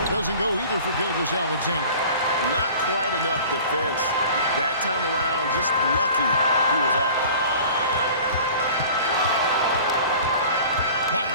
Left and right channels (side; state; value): both; inverted; correlation -0.43